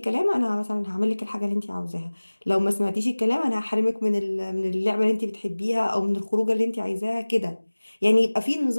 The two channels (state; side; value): inverted; both; correlation -1.00